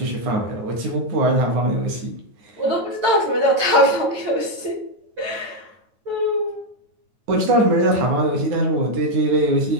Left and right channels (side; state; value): left; late; 9.3 ms